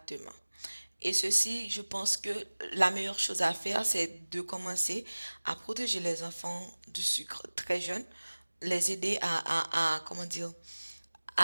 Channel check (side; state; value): both; inverted; correlation -1.00